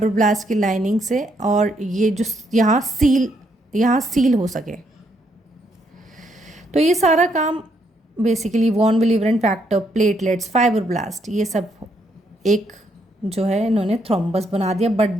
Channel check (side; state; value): both; normal; correlation 0.74